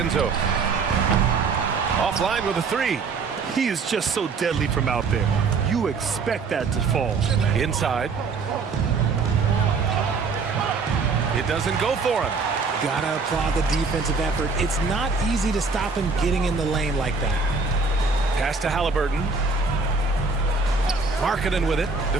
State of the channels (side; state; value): left; quieter; 4.5 dB